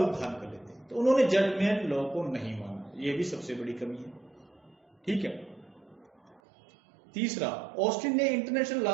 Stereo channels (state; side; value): drops out; left; at 6.4 s